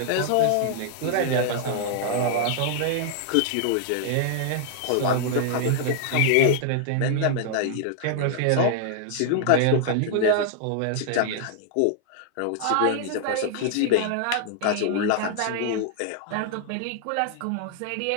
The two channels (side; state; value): both; different; correlation -0.01